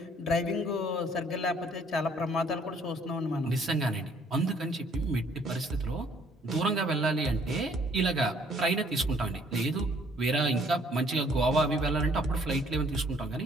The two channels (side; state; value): both; normal; correlation 0.62